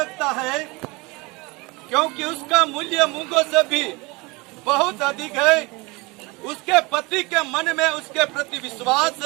है, क्योंकि उसका मूल्य मूंगों से भी बहुत अधिक है। उसके पति के मन में उसके प्रति विश्वास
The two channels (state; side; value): quieter; left; 25.4 dB